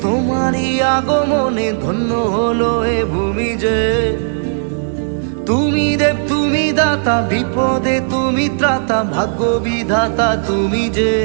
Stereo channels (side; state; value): left; silent; digital silence